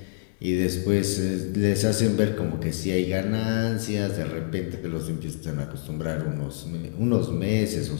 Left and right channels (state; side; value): silent; right; digital silence